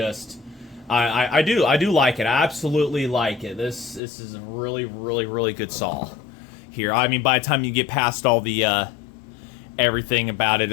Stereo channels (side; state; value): right; drops out; at 4.0 s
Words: I do like it. I absolutely like it. This is a really, really, really good saw here. I mean, by the time you get past all the everything about it,